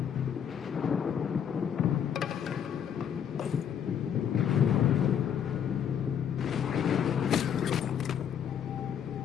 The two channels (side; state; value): right; quieter; 8.5 dB